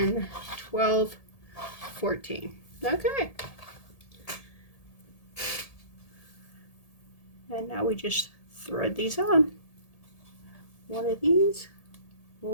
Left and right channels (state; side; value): late; right; 1.8 ms